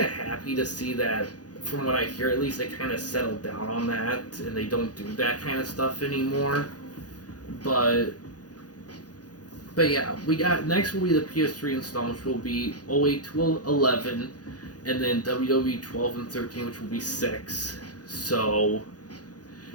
of happy to see that. From what I hear, at least they kind of settled down on that, and they don't do that kind of stuff anymore. But yeah, we got next will be the PS3 installments, will be 08 to 11, and then WWE 12 and 13, which will be 6. So,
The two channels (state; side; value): late; right; 0.68 ms